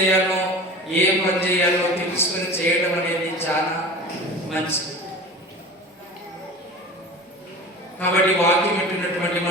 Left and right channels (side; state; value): both; normal; correlation 0.36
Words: ఏ పని చేయాలో తెలుసుకొని చేయడం అనేది చాలా మంచిది. కాబట్టి వాక్యం పెట్టినటువంటి